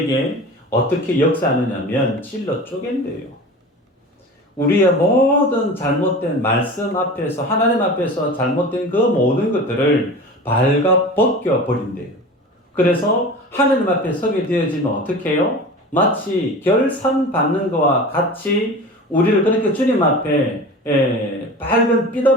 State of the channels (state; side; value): normal; both; correlation 0.35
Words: 어떻게 역사하느냐면 찔러 쪼갠대요. 우리의 모든 잘못된 말씀 앞에서, 하나님 앞에서 잘못된 그 모든 것들을 발가 벗겨 버린대요. 그래서 하나님 앞에 서게 되어지면 어떻게 해요? 마치 결산 받는 것과 같이 우리를 그렇게 주님 앞에 밝은 빛